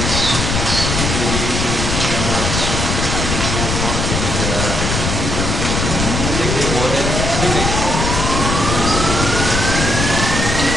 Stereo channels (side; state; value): left; noise; rumble, 1 dB below the sound